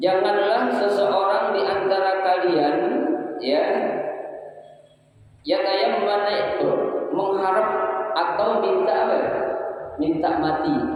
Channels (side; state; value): both; identical; correlation 1.00